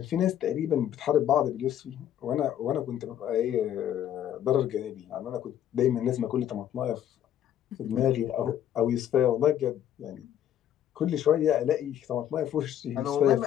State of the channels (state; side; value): quieter; right; 10.7 dB